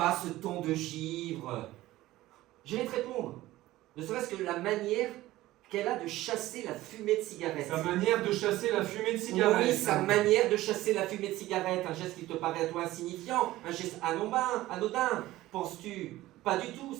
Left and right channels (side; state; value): left; quieter; 16.5 dB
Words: ce ton de givre. Je vais te répondre. Ne serait-ce que la manière qu'elle a de chasser la fumée de cigarette. Sa manière de chasser la fumée de cigarette. Oui, sa manière de chasser la fumée de cigarette. Un geste qui te paraît à toi insignifiant, un geste anodin, penses-tu? Pas du tout.